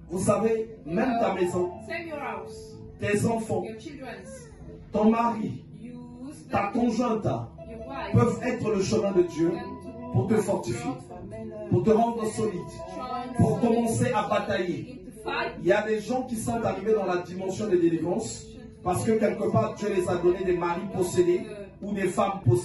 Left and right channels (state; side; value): identical; both; correlation 1.00